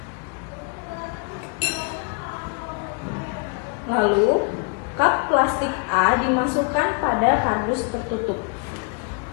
Lalu, cup plastik A dimasukkan pada kardus tertutup.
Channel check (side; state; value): right; quieter; 35.3 dB